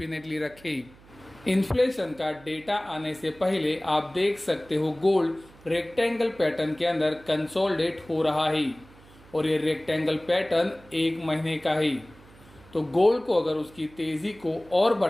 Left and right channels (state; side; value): noise; right; hum, 24 dB below the sound